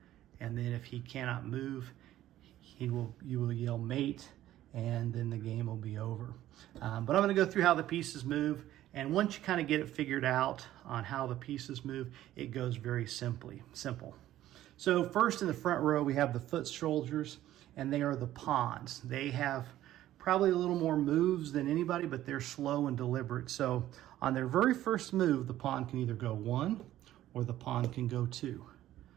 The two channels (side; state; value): left; quieter; 13.6 dB